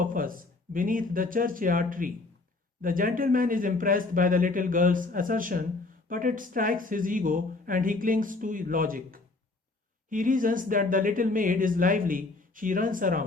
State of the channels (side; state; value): right; quieter; 3.4 dB